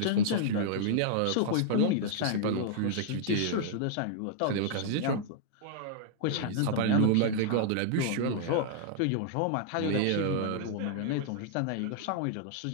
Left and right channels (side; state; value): both; different; correlation -0.01